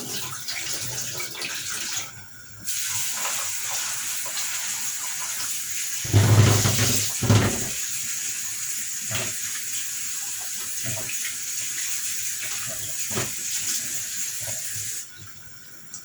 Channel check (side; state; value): both; identical; correlation 1.00